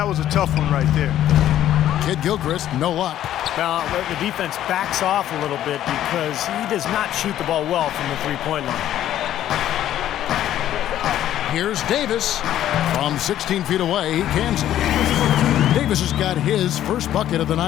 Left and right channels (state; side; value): quieter; right; 12.0 dB